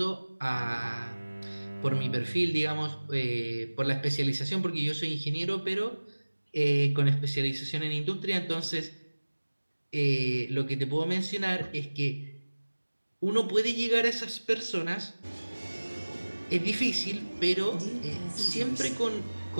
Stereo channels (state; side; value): inverted; both; correlation -1.00